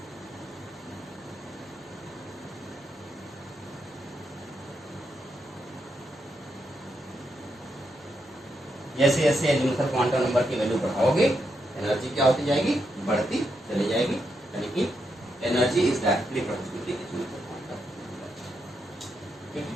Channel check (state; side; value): normal; both; correlation 0.82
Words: जैसे जैसे एजीमुथल क्वांटम नंबर की वैल्यू बढ़ाओगे एनर्जी क्या होती जाएगी? बढ़ती चली जाएगी। यानी कि energy is directly proportional to azimuthal quantum number. ठीक है,